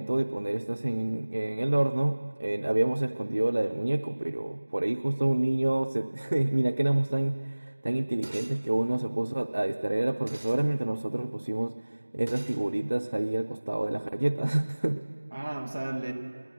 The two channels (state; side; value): inverted; both; correlation -1.00